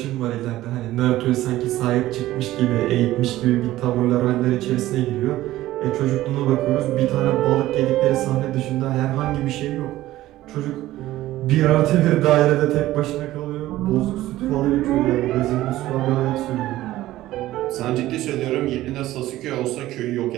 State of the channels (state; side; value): quieter; left; 15.5 dB